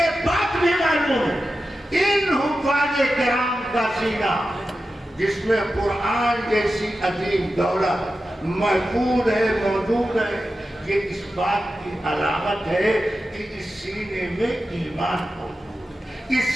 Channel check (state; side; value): normal; both; correlation 0.92